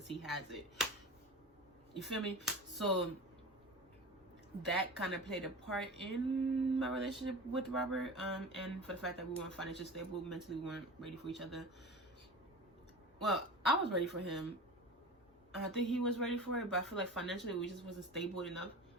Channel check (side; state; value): both; normal; correlation 0.34